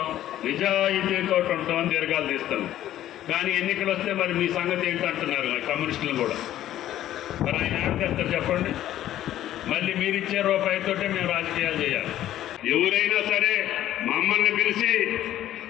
నిజాయితీతో ఉంటాం అని దీర్ఘాలు తీస్తాం. కానీ ఎన్నికలు వస్తే మరి మీ సంగతి ఏంటంటున్నారు కమ్యూనిస్టులు కూడా. మరి ఆయన ఏం చేస్తారు చెప్పండి? మళ్ళీ మీరిచ్చే రూపాయితోటే మేము రాజకీయాలు చేయాలి. ఎవరైనా సరే మమ్మల్ని పిలిచి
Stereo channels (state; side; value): quieter; right; 12.7 dB